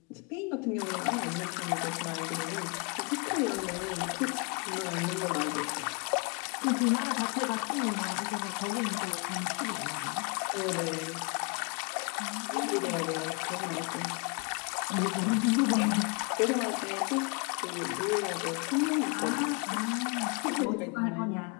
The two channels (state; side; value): quieter; right; 33.5 dB